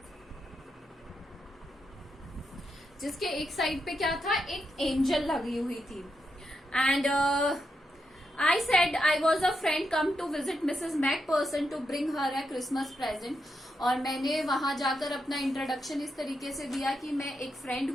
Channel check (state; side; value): normal; both; correlation 0.84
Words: जिसके एक साइड पे क्या था? एक एंजल लगी हुई थी. And I said I was a friend come to visit Mrs. Macpherson to bring her a Christmas present. और मैंने वहां जाकर अपना इंट्रोडक्शन इस तरीके से दिया कि मैं एक फ्रेंड